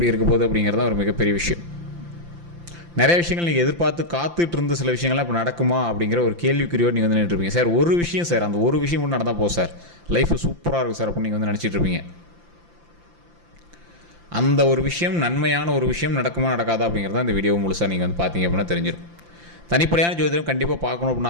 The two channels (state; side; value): late; left; 5.8 ms